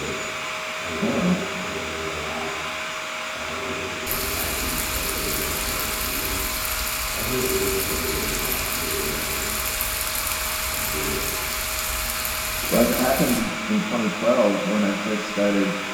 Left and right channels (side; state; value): both; identical; correlation 1.00